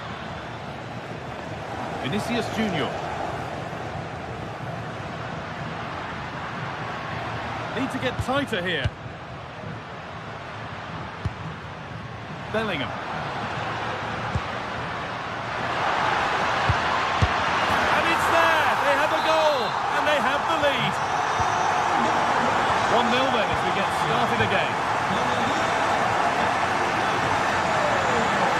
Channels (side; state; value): both; identical; correlation 1.00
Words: Vinicius Junior. Need to get tighter here. Bellingham. And it's there! They have a goal! And they have the lead. 1-0 then as we get started again.